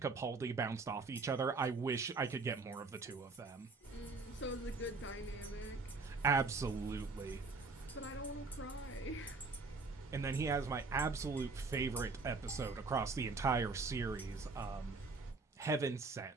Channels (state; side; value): quieter; left; 4.0 dB